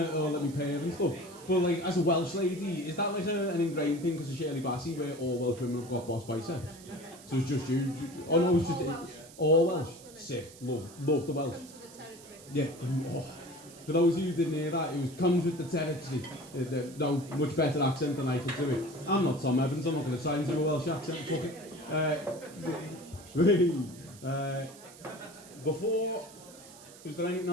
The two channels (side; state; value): right; noise; hiss, 20 dB below the sound